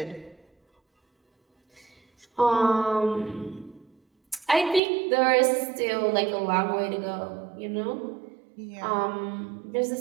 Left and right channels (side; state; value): left; drops out; at 4.8 s